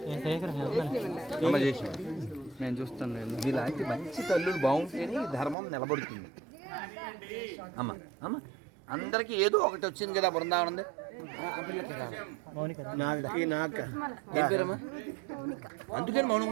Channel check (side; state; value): left; drops out; at 5.6 s